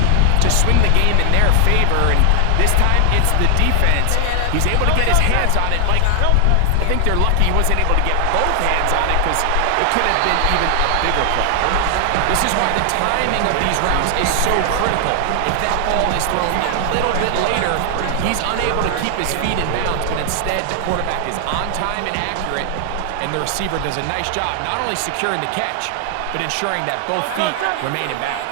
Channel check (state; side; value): different; both; correlation 0.00